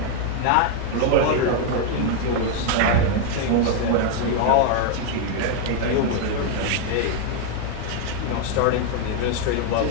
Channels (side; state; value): both; different; correlation 0.01